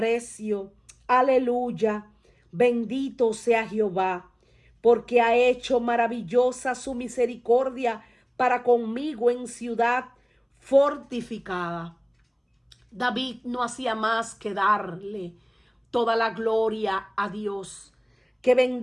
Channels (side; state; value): both; identical; correlation 1.00